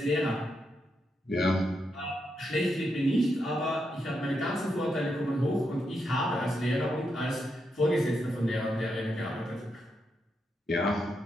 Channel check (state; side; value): normal; both; correlation 0.83